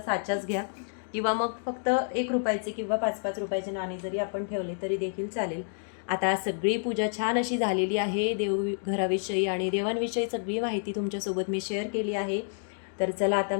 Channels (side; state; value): right; silent; digital silence